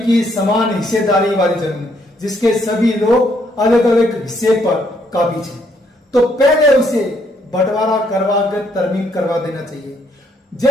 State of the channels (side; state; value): both; normal; correlation 0.71